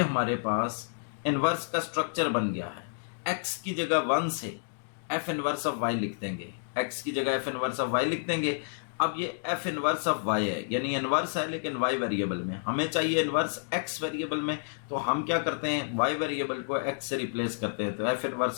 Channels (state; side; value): silent; right; digital silence